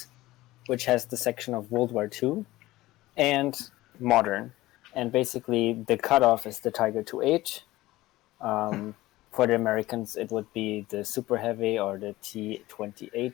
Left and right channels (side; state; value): right; quieter; 17.7 dB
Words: which has the section of World War II and modern. And basically, the cutoff is the Tiger 2H. For the Americans, it would be the Super Heavy or the